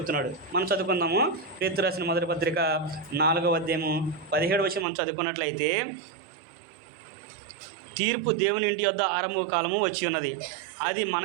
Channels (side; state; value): left; drops out; at 4.9 s